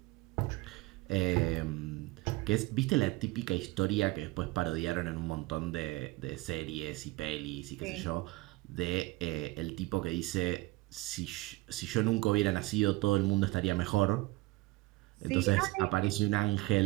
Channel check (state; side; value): quieter; left; 21.3 dB